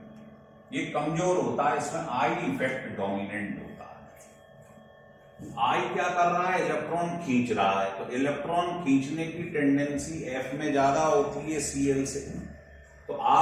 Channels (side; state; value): both; identical; correlation 1.00